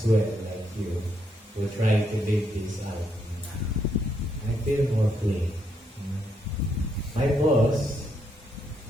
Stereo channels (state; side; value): normal; both; correlation 0.77